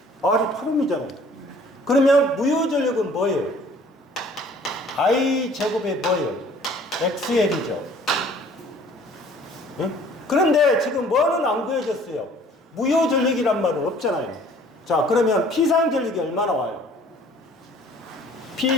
R이 8옴이잖아요. 그러면 무효전력은 뭐예요? I 제곱에 뭐예요? XL이죠. 예? 그런데 지금 뭐는 안 구해졌어요? 무효전력이란 말은 없잖아요. 자, 그러면 P상전력이 얼마나 와요?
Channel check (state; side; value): normal; both; correlation 0.53